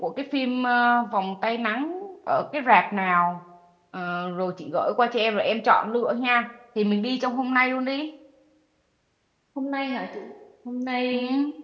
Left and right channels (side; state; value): both; identical; correlation 1.00